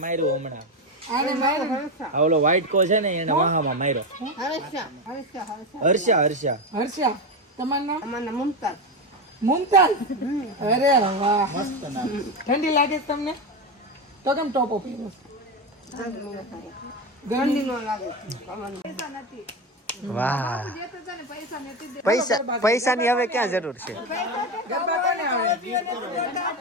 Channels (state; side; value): normal; both; correlation 0.16